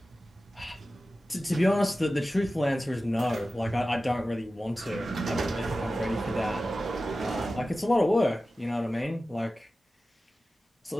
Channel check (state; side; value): normal; both; correlation 0.95